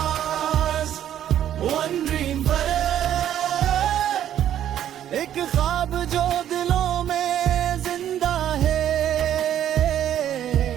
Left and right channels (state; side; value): quieter; left; 10.9 dB